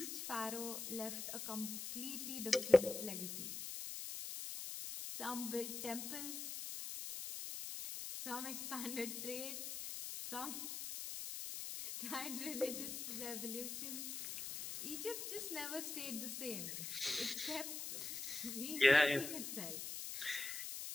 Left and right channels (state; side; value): noise; left; hiss, 5 dB below the sound